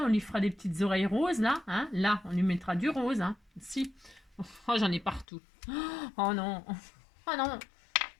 on lui fera des petites oreilles roses là. Hein. Là, on lui mettra du rose. Hein. Si. Oh, j'en ai partout. Oh non. Oh non.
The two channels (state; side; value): drops out; right; at 5.2 s